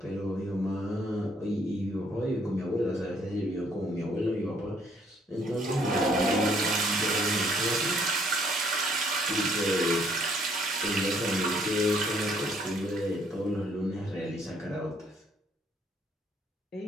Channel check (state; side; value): normal; both; correlation 0.66